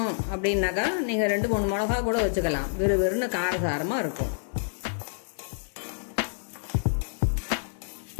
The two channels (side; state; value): right; silent; digital silence